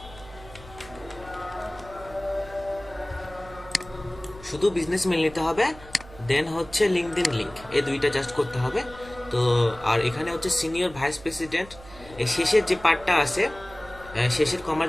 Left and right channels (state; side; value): noise; right; hum, 19 dB below the sound